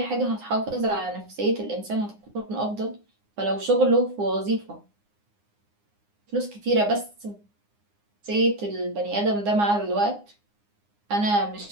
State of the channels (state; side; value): late; left; 9.7 ms